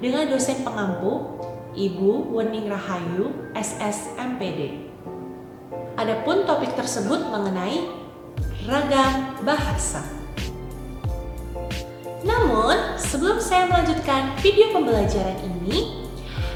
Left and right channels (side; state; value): both; identical; correlation 1.00